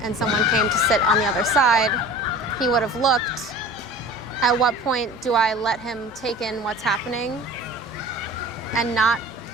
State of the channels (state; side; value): normal; both; correlation 0.40